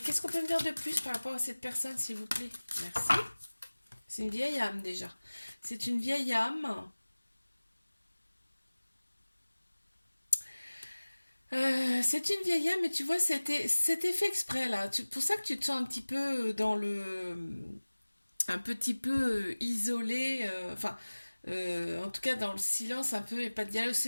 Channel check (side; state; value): both; inverted; correlation -1.00